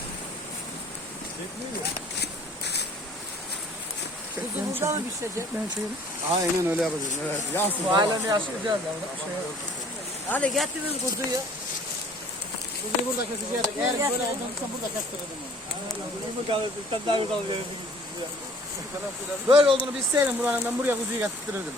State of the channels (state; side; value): normal; both; correlation 0.53